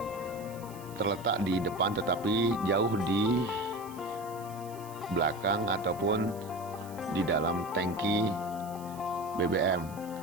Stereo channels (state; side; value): noise; right; hiss, 20 dB below the sound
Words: terletak di depan tetapi jauh di belakang ataupun di dalam tangki BBM.